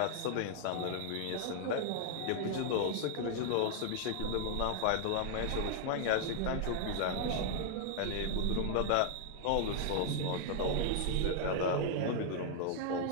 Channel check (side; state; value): both; different; correlation 0.00